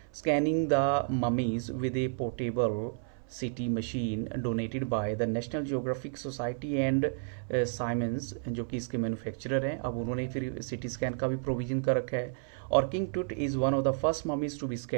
scanning the mummies with a portable CT machine donated by the National Geographic Society and Siemens, जो कि इसके मैन्युफैक्चरर हैं। अब उन्होंने फिर सिटी स्कैन का भी प्रोविजन कर रखा है। और King Tut is one of the first mummies to be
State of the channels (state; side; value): silent; left; 57 dB below the other